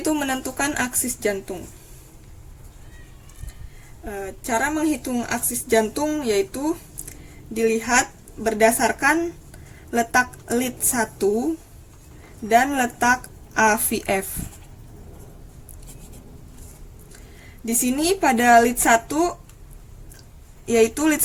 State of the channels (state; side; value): identical; both; correlation 1.00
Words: menentukan aksis jantung. Cara menghitung aksis jantung yaitu dilihat berdasarkan letak lead 1 dan letak AVF. Di sini pada lead 1 yaitu lead